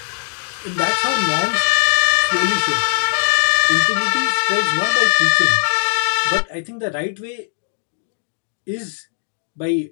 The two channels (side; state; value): right; silent; digital silence